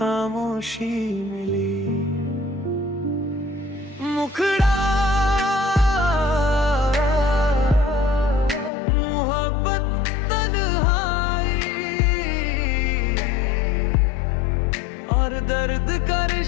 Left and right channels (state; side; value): drops out; right; at 8.7 s